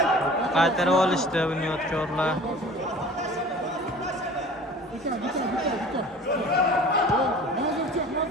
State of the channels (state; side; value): normal; both; correlation 0.43